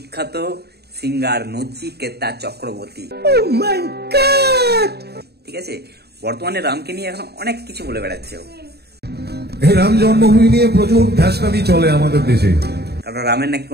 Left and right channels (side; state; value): left; late; 0.47 ms